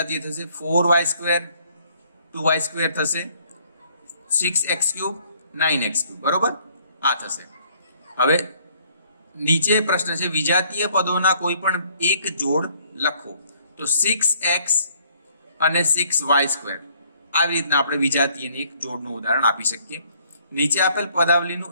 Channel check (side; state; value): both; inverted; correlation -0.63